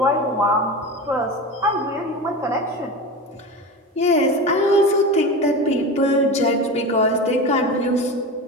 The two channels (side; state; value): both; normal; correlation 0.27